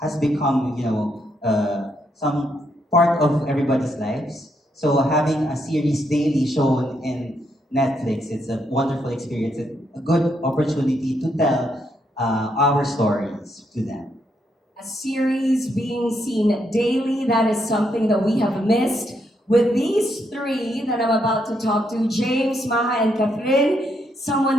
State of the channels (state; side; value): normal; both; correlation 0.77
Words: has become some part of everybody's lives. So having a series daily shown in Netflix, it's a wonderful experience, a good opportunity to tell our stories to them. A series being seen daily, that is something that we have missed. With these three that I'm about to talk to, James, Maja, and KATHRYN,